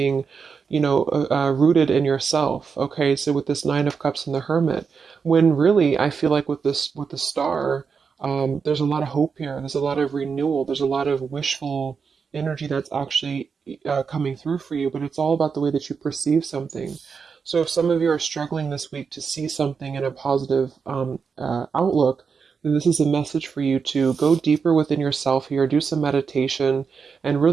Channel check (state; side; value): quieter; left; 5.7 dB